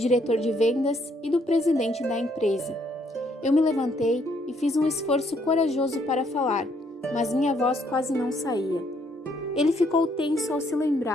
de vendas e do presidente da empresa. Eu me levantei e fiz um esforço corajoso para falar, mas minha voz quase não saía. Ele ficou tenso ao se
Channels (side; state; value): both; normal; correlation 0.69